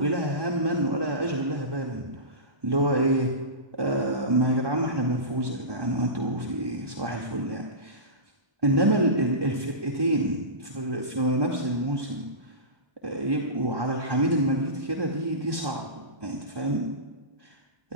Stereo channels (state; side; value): late; left; 1.2 ms